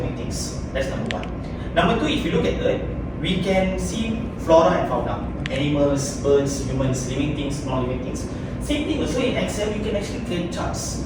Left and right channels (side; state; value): both; identical; correlation 1.00